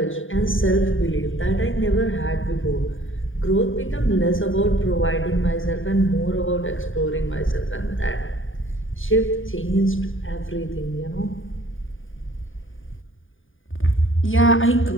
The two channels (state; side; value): late; right; 0.58 ms